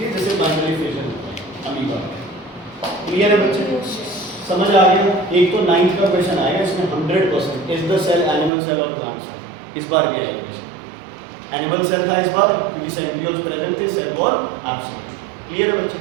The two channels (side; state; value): left; drops out; at 8.5 s